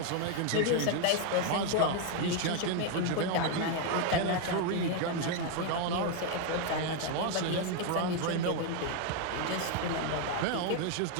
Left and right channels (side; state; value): both; different; correlation 0.01